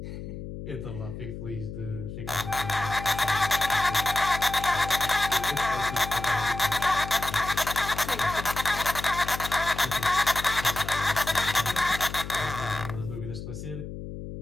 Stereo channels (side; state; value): left; noise; hum, 9 dB below the sound